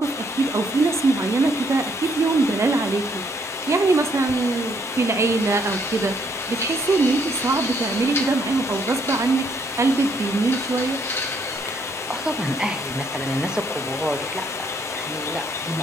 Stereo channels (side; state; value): both; normal; correlation 0.69